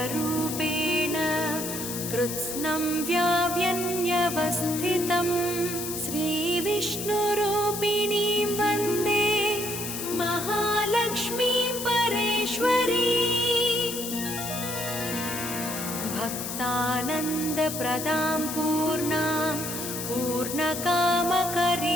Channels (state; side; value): noise; left; hiss, 6 dB below the sound